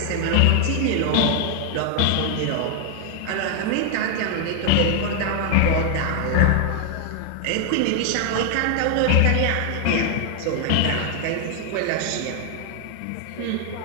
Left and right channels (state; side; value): different; both; correlation 0.00